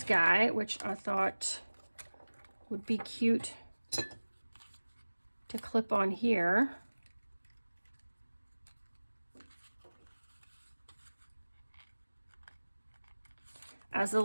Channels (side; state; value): both; inverted; correlation -1.00